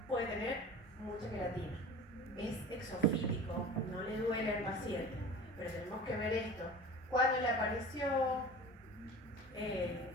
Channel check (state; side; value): normal; both; correlation 0.37